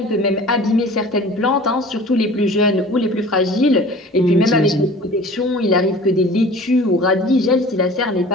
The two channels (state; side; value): normal; both; correlation 0.43